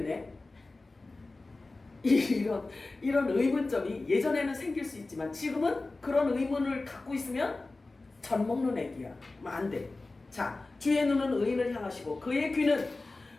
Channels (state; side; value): quieter; right; 3.3 dB